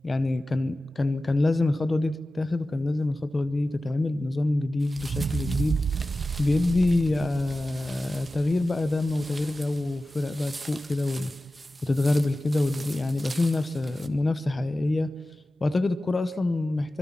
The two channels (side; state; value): both; normal; correlation 0.95